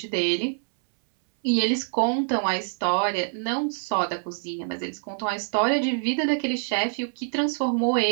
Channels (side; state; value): left; silent; 61 dB below the other